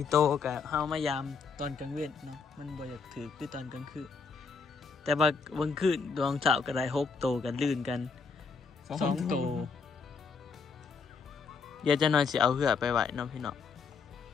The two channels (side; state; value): right; quieter; 5.0 dB